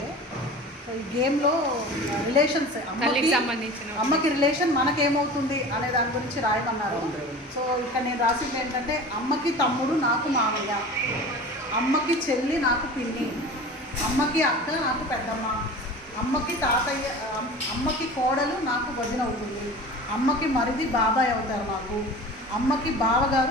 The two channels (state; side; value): normal; both; correlation 0.37